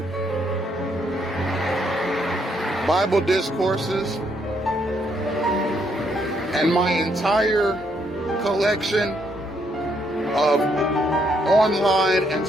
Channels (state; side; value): normal; both; correlation 0.73